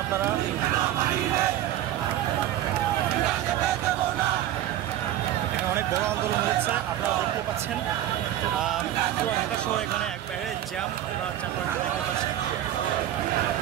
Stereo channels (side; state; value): left; quieter; 12.7 dB